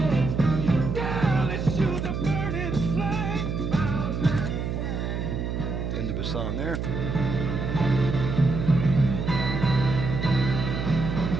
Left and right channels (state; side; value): noise; right; hum, 2 dB below the sound